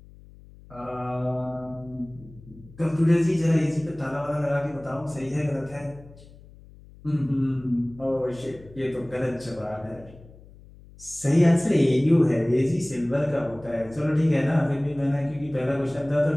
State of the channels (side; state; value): left; noise; hum, 22 dB below the sound